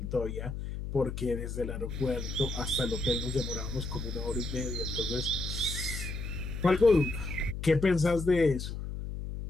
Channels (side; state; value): left; noise; hum, 6 dB below the sound